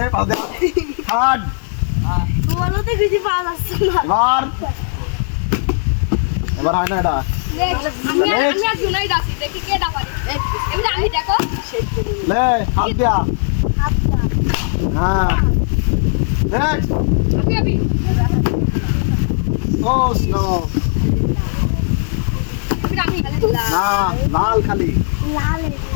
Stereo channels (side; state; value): right; silent; 68 dB below the other